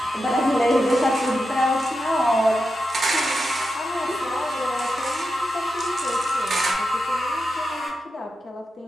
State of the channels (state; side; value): normal; both; correlation 0.89